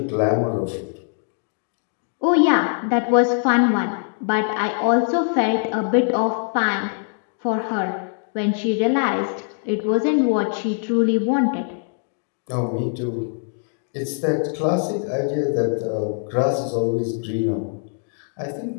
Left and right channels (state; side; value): silent; right; 64 dB below the other